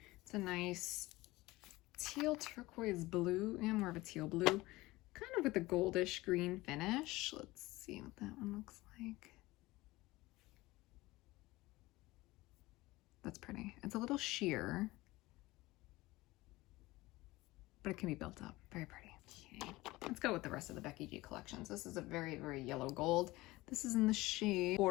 It's a nice teal turquoise blue, and more of a teal blue, kind of with a goldish green finish. Let's see what that one looks like. That's pretty. It's a little sheer, but it can be built up. Very pretty. Okay, let's go with the rest of the Becky G collections. This is a very, very yellow gold. This is in the shade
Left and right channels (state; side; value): quieter; right; 19.7 dB